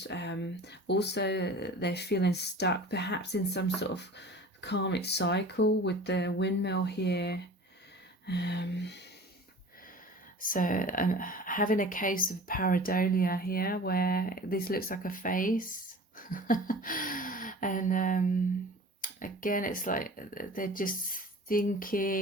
Also, they're feeling stuck, perhaps in some sort of karmic cycle with the windmill here. So I'm having a case of pareidolia here, where this looks like a face. And again, it's like they're just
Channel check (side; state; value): both; normal; correlation 0.41